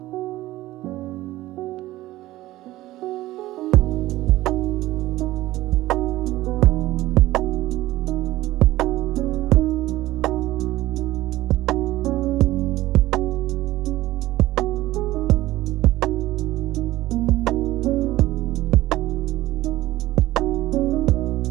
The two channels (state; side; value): quieter; left; 16.5 dB